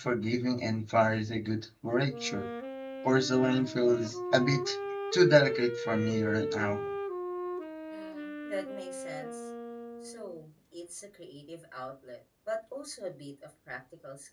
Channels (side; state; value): both; identical; correlation 1.00